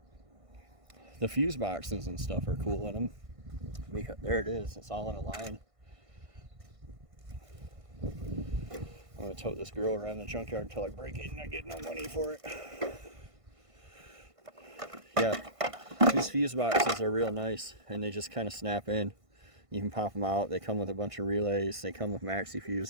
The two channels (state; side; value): late; left; 1.5 ms